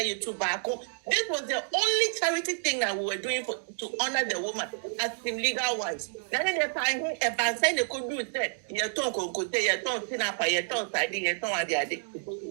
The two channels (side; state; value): left; silent; 58 dB below the other